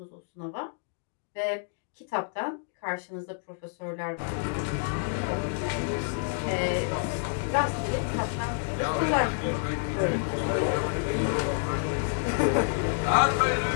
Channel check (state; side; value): silent; right; digital silence